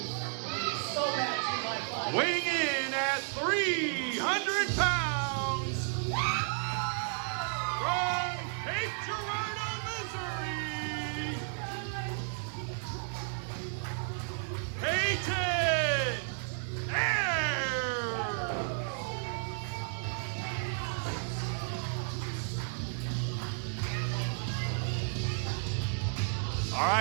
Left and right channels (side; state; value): left; silent; 56 dB below the other